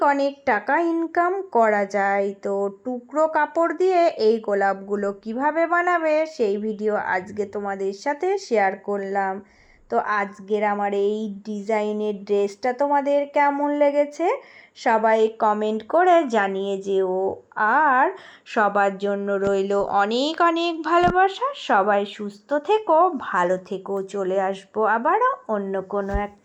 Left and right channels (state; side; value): identical; both; correlation 1.00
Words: অনেক টাকা ইনকাম করা যায়। তো টুকরো কাপড় দিয়ে এই গোলাপগুলো কিভাবে বানাবে সেই ভিডিও আজকে তোমাদের সাথে শেয়ার করলাম। তো আজকের আমার এই ডিজাইনের ড্রেসটা তোমাদের কেমন লেগেছে সবাই কমেন্ট করে জানিয়ে যেও। আর সবার জন্য রইল অনেক অনেক ভালোবাসা। সবাই সুস্থ থেকো, ভালো থেকো। চলে আসবো আবারও অন্য কোনো